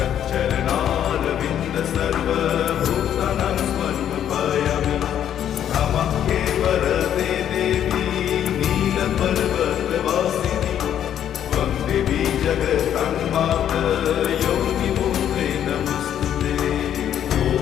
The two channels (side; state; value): right; quieter; 10.1 dB